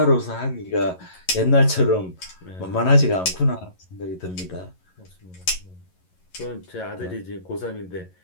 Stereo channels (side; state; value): right; late; 11 ms